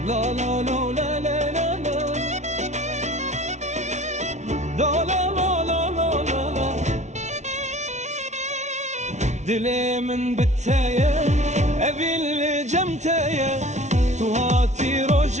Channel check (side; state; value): left; late; 0.33 ms